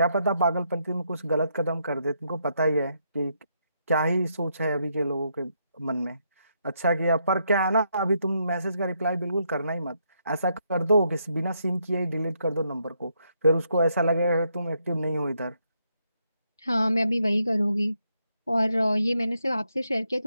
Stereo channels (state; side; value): inverted; both; correlation -0.77